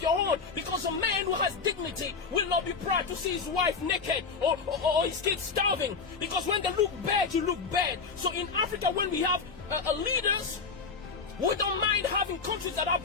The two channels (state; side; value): quieter; right; 4.9 dB